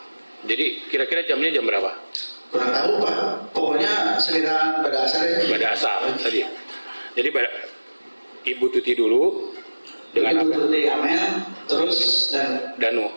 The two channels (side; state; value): both; inverted; correlation -1.00